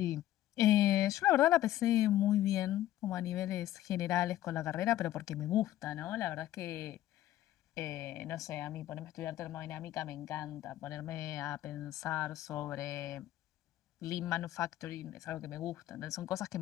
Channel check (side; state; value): right; quieter; 13.6 dB